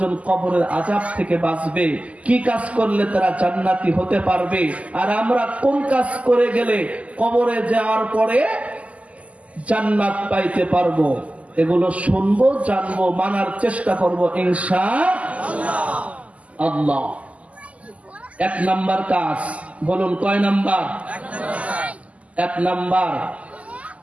কবরের আযাব থেকে বাঁচবে, কি কাজ করলে তারা জান্নাতি হতে পারবে, আর আমরা কোন কাজ করে গেলে কবরে যাওয়ার পরে জান্নাত পাইতে পারবো, এগুলো শুনবো, জানবো, মানার চেষ্টা করবো ইনশাআল্লাহ। 1 নাম্বার কাজ, বলুন কয় নাম্বার? 1 নাম্বার।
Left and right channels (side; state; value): left; late; 0.068 ms